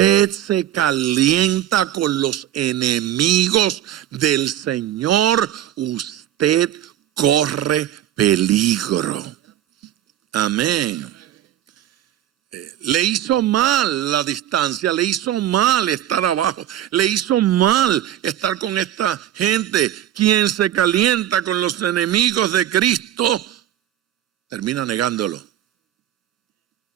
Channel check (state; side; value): quieter; left; 11.9 dB